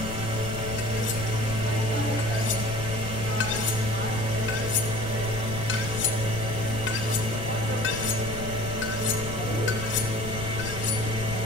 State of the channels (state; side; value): noise; left; rumble, 7 dB below the sound